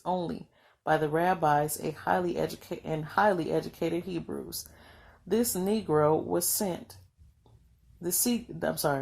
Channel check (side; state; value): both; identical; correlation 1.00